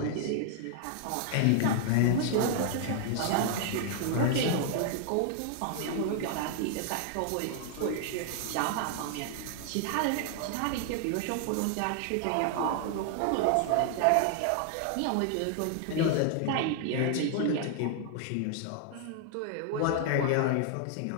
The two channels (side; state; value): both; different; correlation 0.00